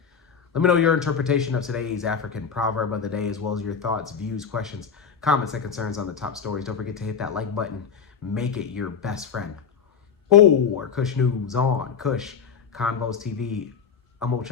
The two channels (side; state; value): right; quieter; 6.5 dB